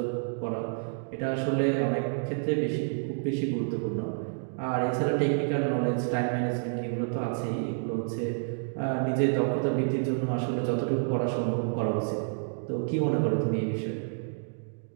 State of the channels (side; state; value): left; silent; digital silence